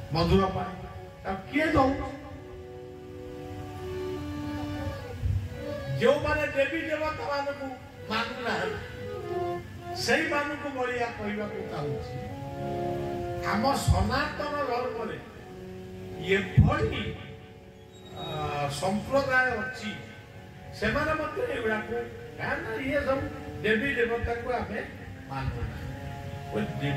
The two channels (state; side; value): identical; both; correlation 1.00